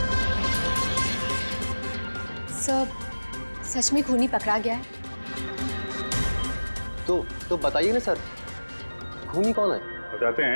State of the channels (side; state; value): both; inverted; correlation -1.00